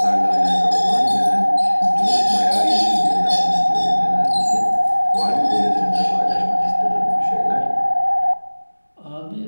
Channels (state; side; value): inverted; both; correlation -1.00